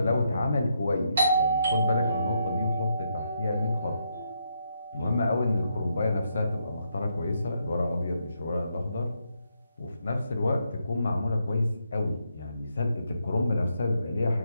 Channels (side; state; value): both; inverted; correlation -0.78